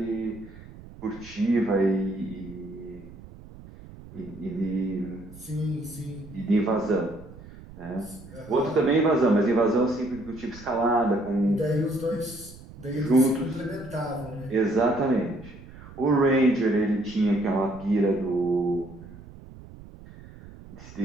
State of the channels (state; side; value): noise; right; rumble, 18 dB below the sound